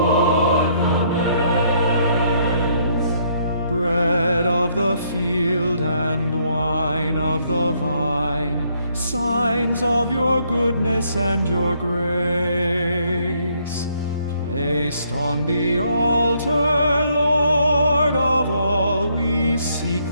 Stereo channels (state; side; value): inverted; both; correlation -0.70